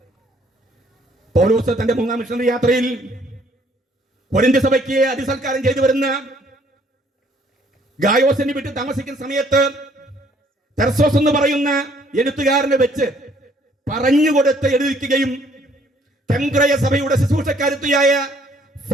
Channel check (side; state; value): both; normal; correlation 0.63